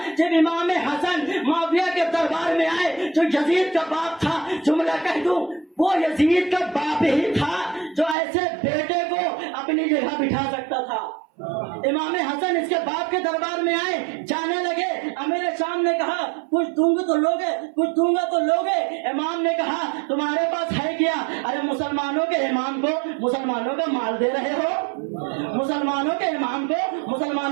جب امام حسن معاویہ کے دربار میں آئے جو یزید کا باپ تھا۔ جملہ کہہ دوں، وہ یزید کا باپ ہی تھا جو ایسے بیٹے کو اپنی جگہ بٹھا سکتا تھا۔ امام حسن اس کے باپ کے دربار میں آئے، جانے لگے، امیر شام نے کہا کچھ دوں گے تو لوگے، کچھ دوں گا تو لوگے۔ امام نے کہا تمہارے پاس ہے کیا؟ ارے مسلمانوں کے امام کو مسلمانوں کا مال دے رہے ہو، مسلمانوں کے امام کو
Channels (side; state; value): left; drops out; at 8.2 s